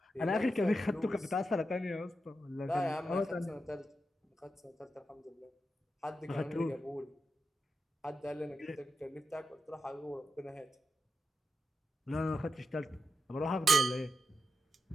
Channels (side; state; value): both; normal; correlation 0.87